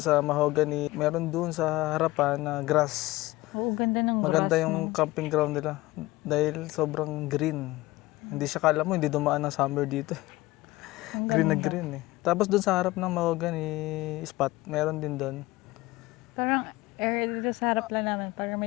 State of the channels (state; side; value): quieter; right; 19.5 dB